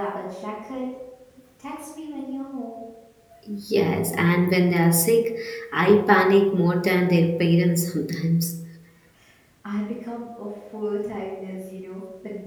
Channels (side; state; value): both; identical; correlation 1.00